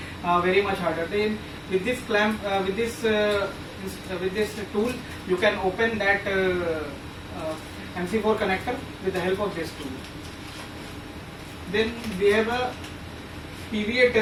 very much harder. Then with this clamp, with this tool, you can open that MC4 connector with the help of this tool. Then we have a PVA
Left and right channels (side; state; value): both; identical; correlation 1.00